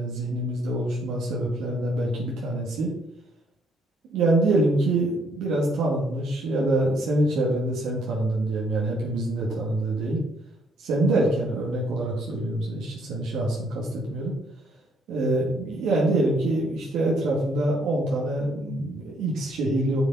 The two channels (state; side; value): normal; both; correlation 0.68